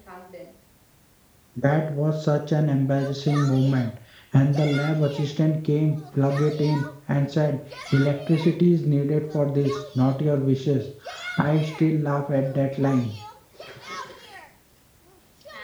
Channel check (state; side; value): identical; both; correlation 1.00